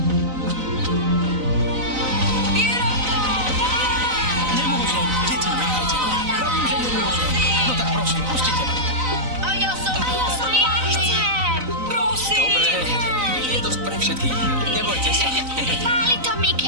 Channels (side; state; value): left; late; 3.9 ms